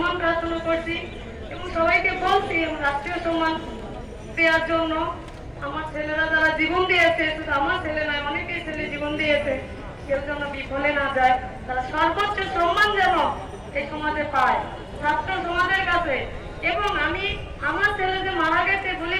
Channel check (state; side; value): identical; both; correlation 1.00